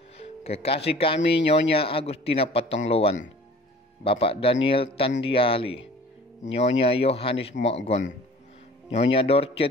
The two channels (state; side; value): normal; both; correlation 0.47